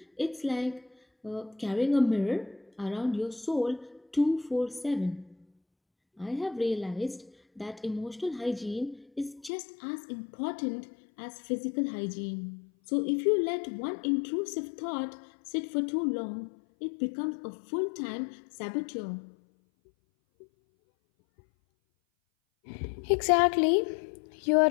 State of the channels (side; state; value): right; drops out; at 9.5 s